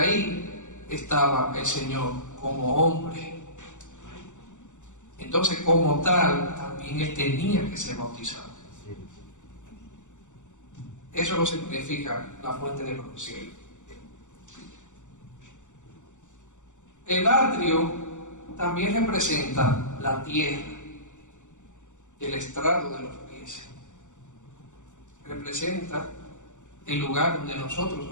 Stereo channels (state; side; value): late; right; 0.85 ms